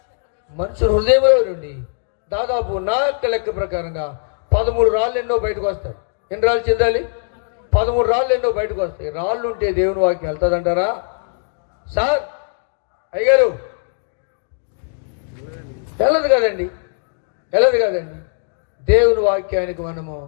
మనిషి హృదయంలో నుండి దాదాపు నా లెక్క ప్రకారంగా 13 రాళ్ళు ఎన్నో బయటకు వస్తాయి. ఎన్ని రాళ్ళు చెందాలి? 13 రాళ్ళు ఎన్నో బయటకు వస్తాయి. రాళ్ళు ఉంటే దేవుని వాక్యం వెళ్తుందంటారా? సార్ అయ్యగారు, వెళ్ళదు కదండి, వెళ్ళదు కదండి. దేవుని వాక్యానికి మనము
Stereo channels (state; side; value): silent; right; digital silence